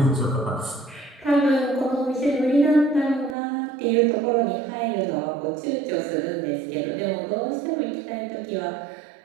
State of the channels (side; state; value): left; drops out; at 3.4 s